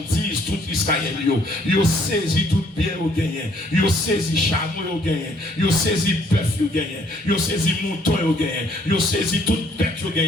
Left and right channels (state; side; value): normal; both; correlation 0.63